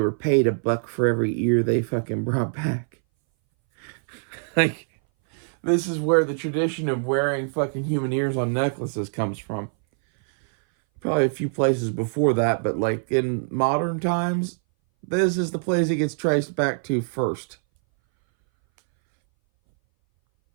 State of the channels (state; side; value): silent; left; 60 dB below the other